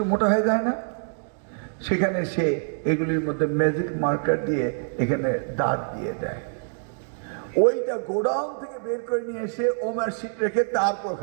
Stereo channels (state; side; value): silent; left; digital silence